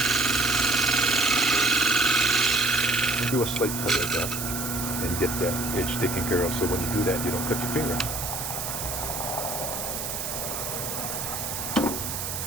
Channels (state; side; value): noise; right; hiss, 4 dB below the sound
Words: Do a slight cut like that and get that edge taken care of, so when you do that you don't cut your finger.